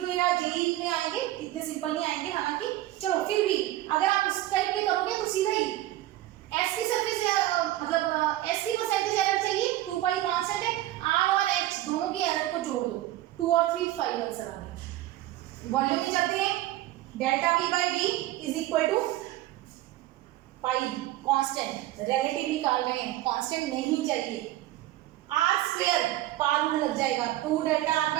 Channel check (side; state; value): left; quieter; 15.3 dB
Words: में या जेईई में आएंगे, इतने सिंपल नहीं आएंगे हालांकि, चलो फिर भी अगर आप उस टाइप के करोगे तो सीधा ही S की सरफेस, मतलब S की परसेंटेज एरर चाहिए, 2 पाई कांस्टेंट है, R और H दोनों की एरर को जोड़ दो, 2 और 3 5 आंसर आ गया। वॉल्यूम में जाते हैं, delta V/V is equal to pi constant, relative निकाल रहे हैं, कांस्टेंट नहीं चाहिए। R² पार रूल लग जाएगा, 2 delta